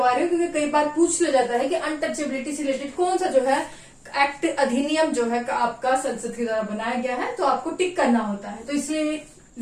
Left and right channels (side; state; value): both; identical; correlation 1.00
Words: रही हूँ क्योंकि कई बार पूछ लिया जाता है कि अनटचेबिलिटी से रिलेटेड कौन सा जो है एक्ट अधिनियम जो है आपका संसद के द्वारा बनाया गया है, तो आपको टिक करना होता है, तो इसलिए